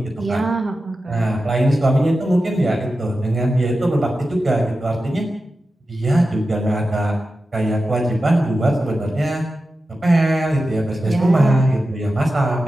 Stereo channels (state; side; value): normal; both; correlation 0.92